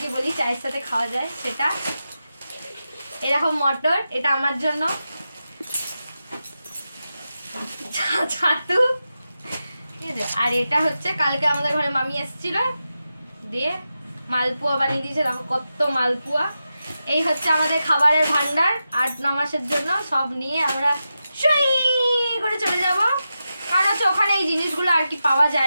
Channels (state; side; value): inverted; both; correlation -0.90